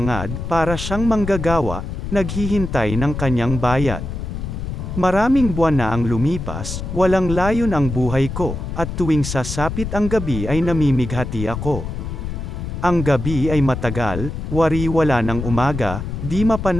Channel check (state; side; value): noise; left; rumble, 6 dB below the sound